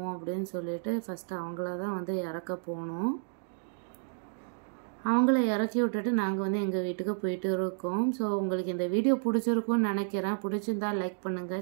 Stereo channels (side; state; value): left; silent; digital silence